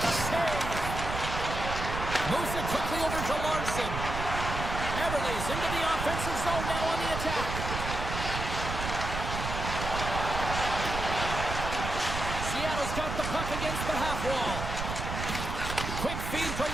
save. Moves it quickly over to Larson. Everly's into the offensive zone now on the attack. Seattle's got the puck against the half wall. Quick feed to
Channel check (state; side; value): noise; right; rumble, 4 dB below the sound